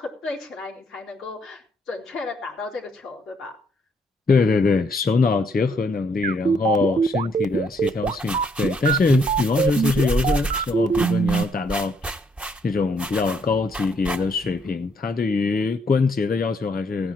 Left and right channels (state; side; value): normal; both; correlation 0.71